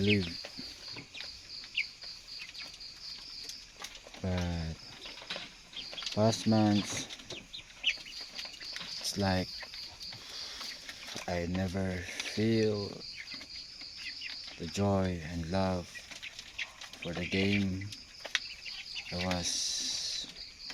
But past months, it's like I never feel the joy and love for the game. I was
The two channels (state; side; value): identical; both; correlation 1.00